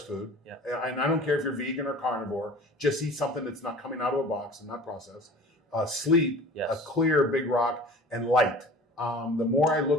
food. Yeah. And I don't care if you're vegan or carnivore, just eat something that's not coming out of a box and not processed. Sleep, yes. A clear big rock, and light. The more I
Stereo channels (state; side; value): normal; both; correlation 0.43